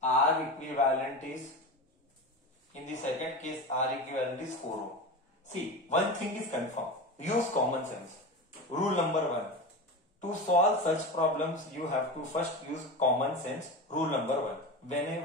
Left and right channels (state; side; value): normal; both; correlation 0.25